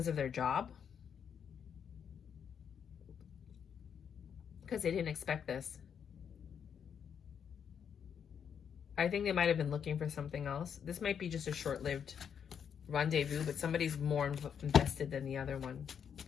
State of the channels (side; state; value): right; quieter; 7.7 dB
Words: of their job. Because they didn't expect this. I think they might have been looking for something else. This might be just a short-lived rendezvous, but somebody's more invested than the other one.